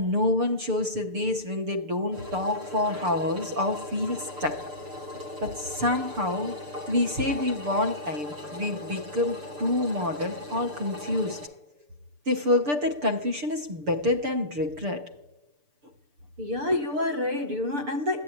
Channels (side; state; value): left; late; 6.8 ms